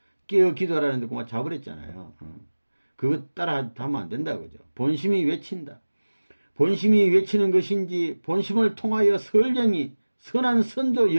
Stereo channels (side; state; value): both; inverted; correlation -1.00